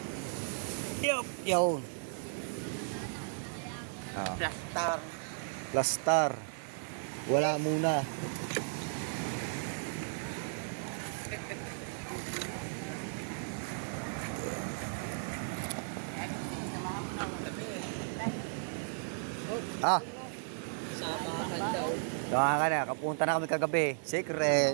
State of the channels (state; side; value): silent; left; digital silence